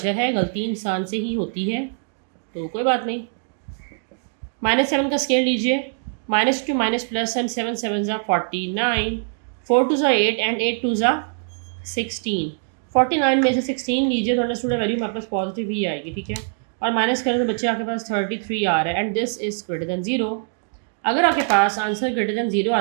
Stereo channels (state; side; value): silent; left; digital silence